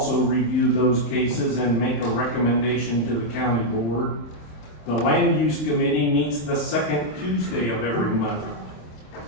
review those cases and make a recommendation to the county board. The Land Use Committee meets the 2nd Tuesday of every month.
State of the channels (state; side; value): late; right; 27 ms